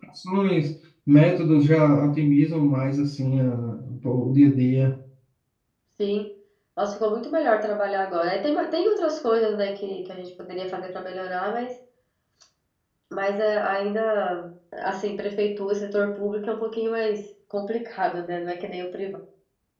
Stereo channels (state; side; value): identical; both; correlation 1.00